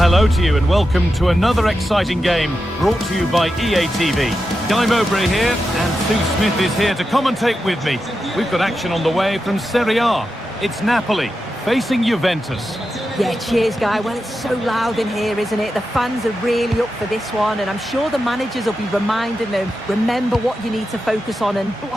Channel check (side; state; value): both; normal; correlation 0.89